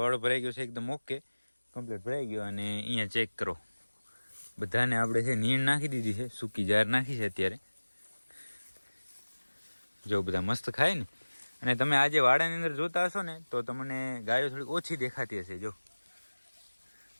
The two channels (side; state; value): both; inverted; correlation -1.00